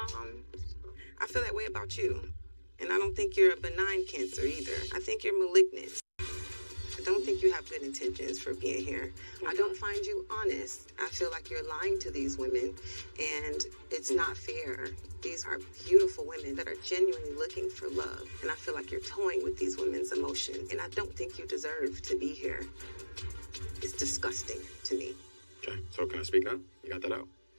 feel that way about you, and I don't think you're a benign cancer either. I think you're malignant. I don't think you have good intentions for being here. I don't find you honest. I feel like you're lying to these women, and it's not fair. These are beautiful women that are genuinely looking for love, and I feel like you're toying with these women's emotion, and I don't think you deserve to be here. It's disgusting to me. Okay, so can I speak now? You got that out?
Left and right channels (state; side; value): inverted; both; correlation -1.00